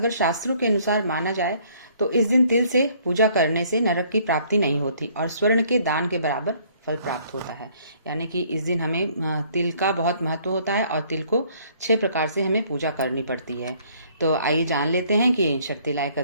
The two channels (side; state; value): both; inverted; correlation -0.61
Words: शास्त्रों के अनुसार माना जाए तो इस दिन तिल से पूजा करने से नरक की प्राप्ति नहीं होती और स्वर्ण के दान के बराबर फल प्राप्त होता है। यानी कि इस दिन हमें तिल का बहुत महत्व होता है और तिल को 6 प्रकार से हमें पूजा करनी पड़ती है। तो आइए जान लेते हैं कि शर्तिला